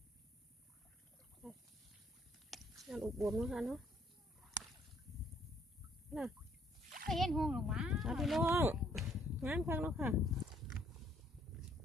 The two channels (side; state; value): both; normal; correlation 0.65